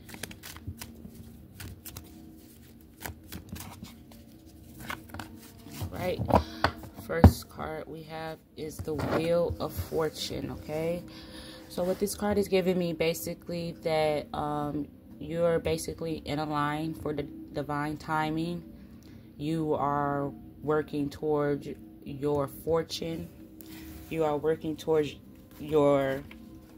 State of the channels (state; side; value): identical; both; correlation 1.00